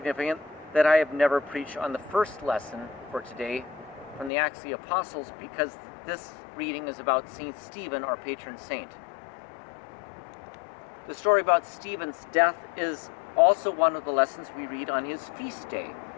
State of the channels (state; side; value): drops out; right; at 4.3 s